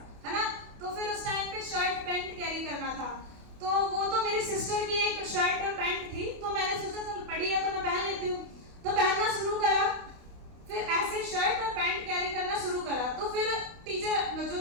है ना। तो फिर उस टाइम पे शर्ट पैंट कैरी करना था, तो वो तो मेरी सिस्टर की एक शर्ट और पैंट थी, तो मैंने सोचा चल पड़ी है तो मैं पहन लेती हूँ, तो पहनना शुरू करा। फिर ऐसे शर्ट और पैंट कैरी करना शुरू करा। तो फिर टीचर जो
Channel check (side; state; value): left; late; 28 ms